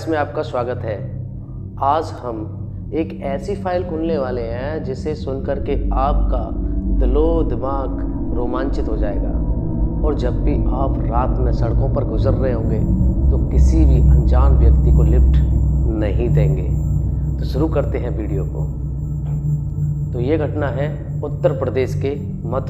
में आपका स्वागत है। आज हम एक ऐसी फाइल खोलने वाले हैं जिसे सुनकर के आपका दिलो दिमाग रोमांचित हो जाएगा। और जब भी आप रात में सड़कों पर गुजर रहे होंगे तो किसी भी अनजान व्यक्ति को लिफ्ट नहीं देंगे। तो शुरू करते हैं वीडियो को। तो ये घटना है उत्तर प्रदेश के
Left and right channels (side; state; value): both; identical; correlation 1.00